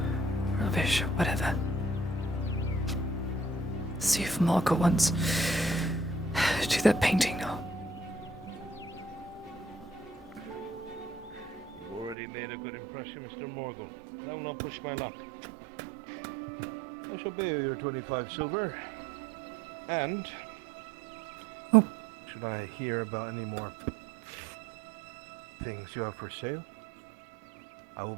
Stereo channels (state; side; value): drops out; left; at 12.2 s